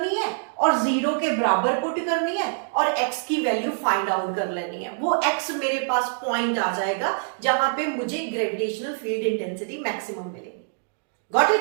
है और जीरो के बराबर पुट करनी है और x की वैल्यू फाइंड आउट कर लेनी है। वो x मेरे पास पॉइंट आ जाएगा जहां पे मुझे ग्रेविटेशनल फील्ड इंटेंसिटी मैक्सिमम मिलेगी। Got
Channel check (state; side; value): silent; left; digital silence